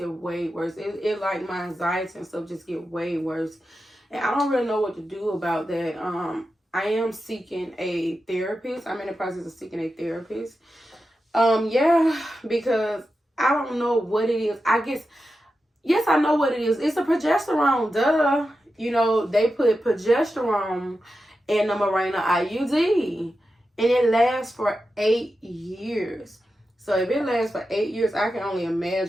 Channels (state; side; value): normal; both; correlation 0.90